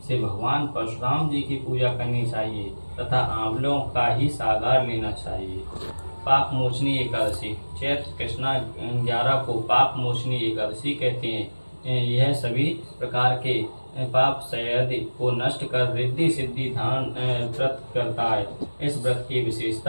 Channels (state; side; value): inverted; both; correlation -1.00